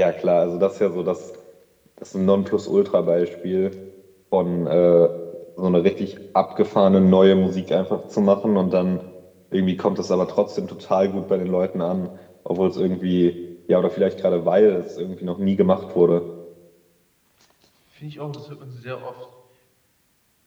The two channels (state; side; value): identical; both; correlation 1.00